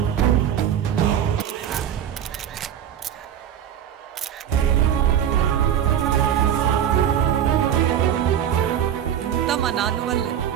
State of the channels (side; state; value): left; quieter; 9.7 dB